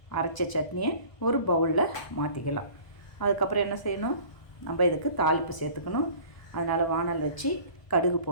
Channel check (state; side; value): late; right; 1.2 ms